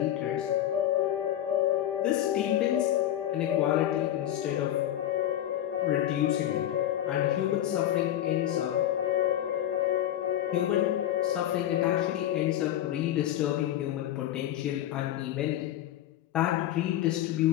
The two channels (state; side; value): quieter; right; 12.2 dB